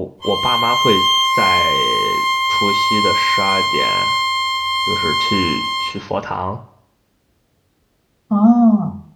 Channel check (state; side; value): identical; both; correlation 1.00